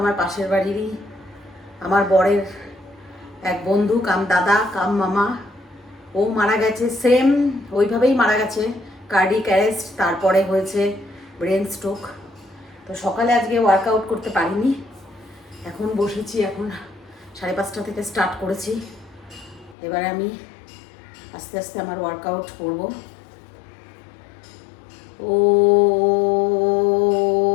পাশের বাড়িরই আমার বরের এক বন্ধু কাম দাদা কাম মামা, ও মারা গেছে। সেম ওইভাবেই মারা গেছে, কার্ডিক অ্যারেস্ট, তারপরে হয়েছে ব্রেন স্ট্রোক। তো সকালে আজকে ওয়ার্কআউট করতে পারিনি, এখন বসেছি। এখন 5:30 থেকে স্টার্ট করেছি। এবারে আমি আস্তে আস্তে আমার ওয়ার্কআউট করব। ও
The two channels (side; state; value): right; drops out; at 19.8 s